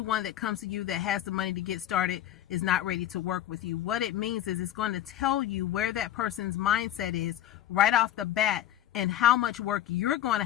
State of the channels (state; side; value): quieter; right; 12.5 dB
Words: that comes to you that has the money to get started is not ready to work with you. What it means is it's going to tell you where that person's mindset is right off the bat and how much work you're going to